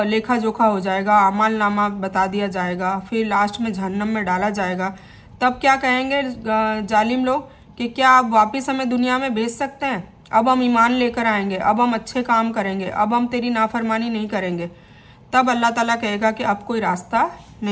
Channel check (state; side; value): identical; both; correlation 1.00